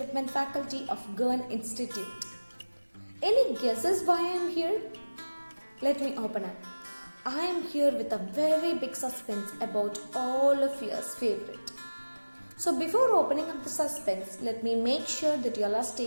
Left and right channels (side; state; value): both; inverted; correlation -1.00